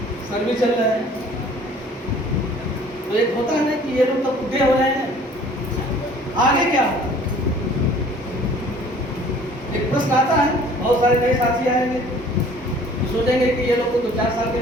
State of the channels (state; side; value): normal; both; correlation 0.52